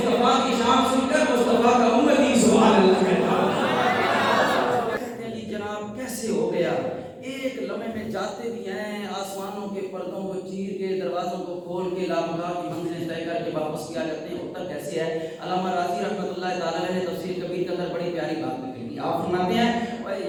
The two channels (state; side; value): identical; both; correlation 1.00